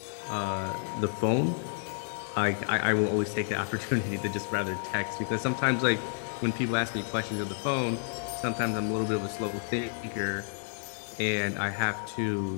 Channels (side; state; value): right; silent; digital silence